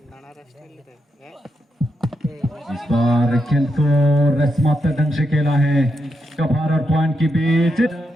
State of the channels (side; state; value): both; normal; correlation 0.84